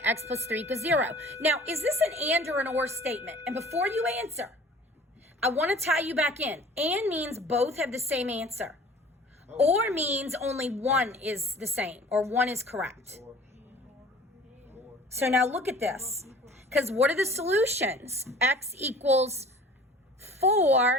X plus 3 equals 0. Now, is this an and or an or statement? And before you answer, I want to tie you back in. And means both have the same answer. Or means only one is the same, or one is correct. So now look at this. Because what are the solutions? X equals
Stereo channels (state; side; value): normal; both; correlation 0.46